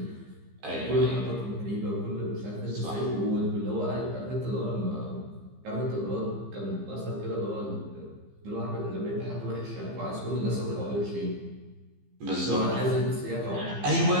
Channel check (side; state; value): left; late; 15 ms